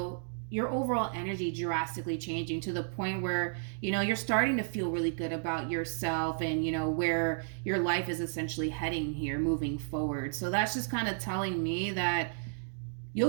your overall energy drastically changing to the point where, you're starting to feel really good about yourself and, where your life is essentially heading here moving forward. So that's just kind of telling me that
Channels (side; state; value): left; silent; digital silence